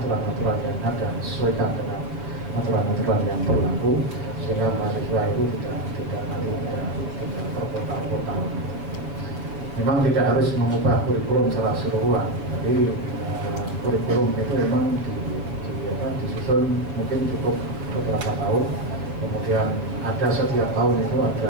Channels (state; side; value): late; left; 6.8 ms